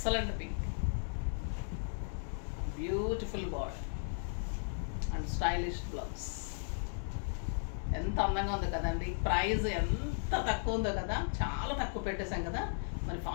pink, beautiful border and stylish blouse. ఎంత అందంగా ఉంది కదండి. ప్రైస్ ఎంత తక్కువ ఉందో కదా, చాలా తక్కువ పెట్టేశాం కదా, మరి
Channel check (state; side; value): silent; right; digital silence